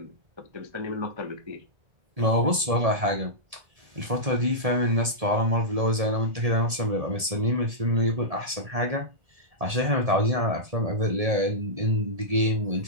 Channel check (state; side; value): late; left; 1.7 ms